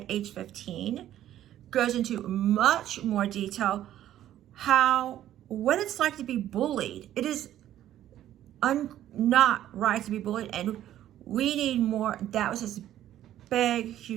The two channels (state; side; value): quieter; left; 12.3 dB